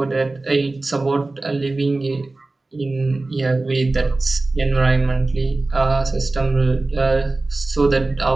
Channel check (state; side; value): quieter; left; 3.2 dB